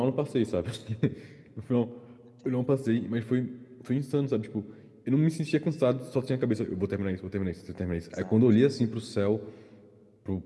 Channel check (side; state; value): both; identical; correlation 1.00